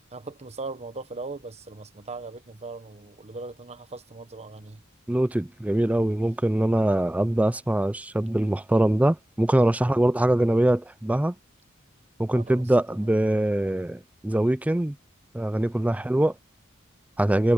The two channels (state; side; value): normal; both; correlation 0.96